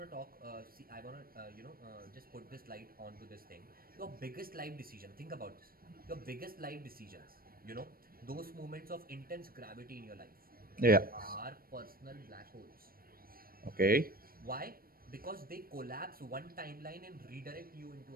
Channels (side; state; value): left; late; 0.43 ms